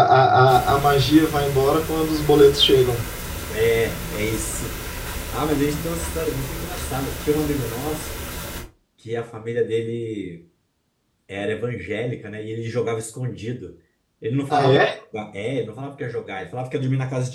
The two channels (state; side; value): identical; both; correlation 1.00